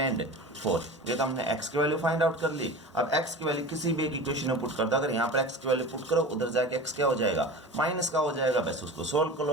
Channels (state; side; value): normal; both; correlation 0.33